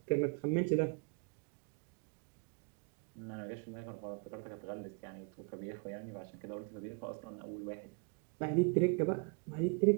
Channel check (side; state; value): left; quieter; 34.4 dB